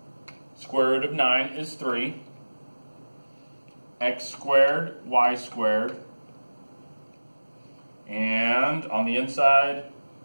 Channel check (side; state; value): both; inverted; correlation -1.00